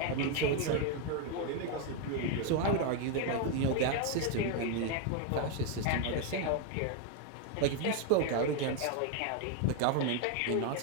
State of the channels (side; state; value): both; different; correlation 0.01